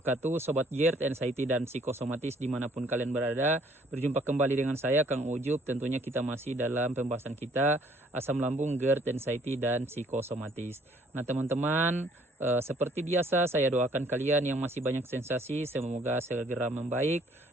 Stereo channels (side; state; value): both; normal; correlation 0.61